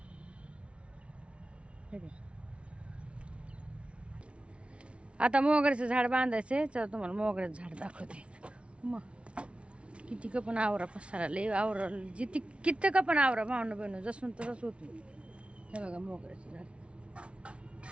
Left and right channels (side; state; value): left; late; 0.060 ms